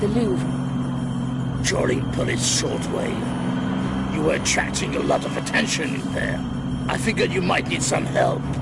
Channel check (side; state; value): both; identical; correlation 1.00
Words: the Louvre? Trawling police shortwave. You were attracting a lot of attention in there. I figured you might need some help.